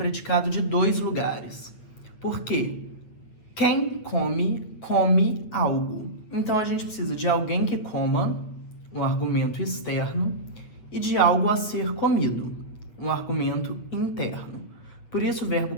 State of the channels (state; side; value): late; right; 8.5 ms